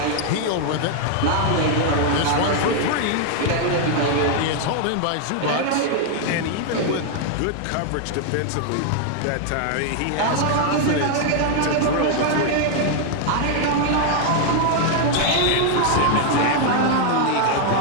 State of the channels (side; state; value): both; different; correlation 0.00